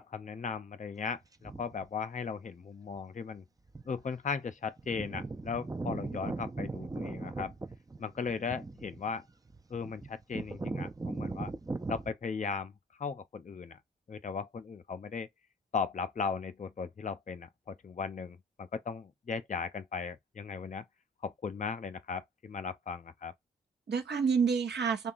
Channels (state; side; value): normal; both; correlation 0.49